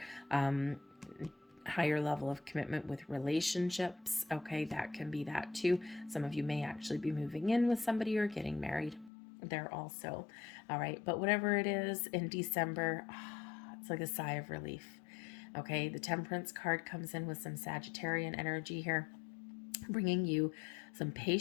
higher level of commitment with relationships. Okay, that can be that too. Some of you may actually be moving in with somebody or getting married there also. All right, but whatever it is in December, it's like a sigh of relief. Okay, the Temperance card comes in with some Sagittarian energy here, bringing you some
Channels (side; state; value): right; drops out; at 9.1 s